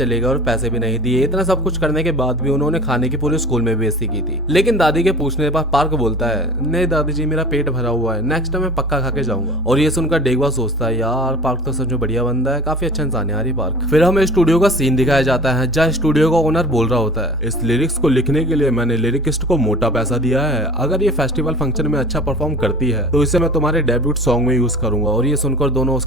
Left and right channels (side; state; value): both; normal; correlation 0.42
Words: गए और पैसे भी नहीं दिए। इतना सब कुछ करने के बाद भी उन्होंने खाने की पूरे स्कूल में बेइज्जती की थी। लेकिन दादी के पूछने पर पार्क बोलता है, नहीं दादी जी मेरा पेट भरा हुआ है, नेक्स्ट टाइम मैं पक्का खा के जाऊंगा। और ये सुनकर डेगुआ सोचता है, यार पार्क तो सच में बढ़िया बंदा है, काफी अच्छा इंसान है यार ये पार्क। फिर हमें स्टूडियो का सीन दिखाया जाता है जहाँ स्टूडियो का ओनर बोल रहा होता है, इस लिरिक्स को लिखने के लिए मैंने लिरिकिस्ट को मोटा पैसा दिया है, अगर ये फेस्टिवल फंक्शन में अच्छा परफॉर्म करती है तो इसे मैं तुम्हारे डेब्यूट सॉन्ग में यूज करूंगा। और ये सुनकर दोनों